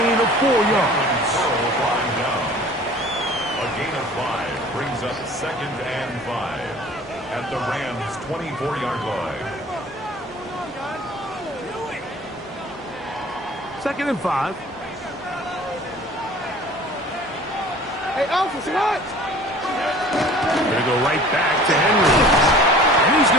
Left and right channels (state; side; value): normal; both; correlation 0.46